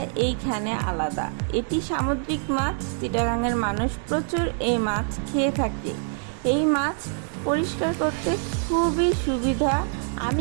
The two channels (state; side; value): silent; left; 62 dB below the other